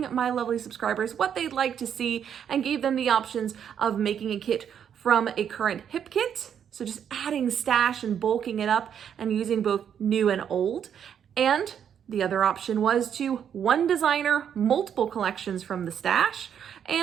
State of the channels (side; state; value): left; quieter; 8.5 dB